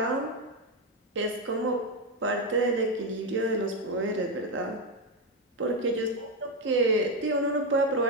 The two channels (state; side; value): normal; both; correlation 0.08